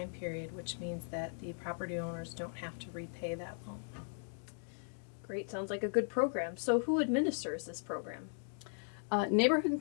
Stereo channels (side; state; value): right; silent; digital silence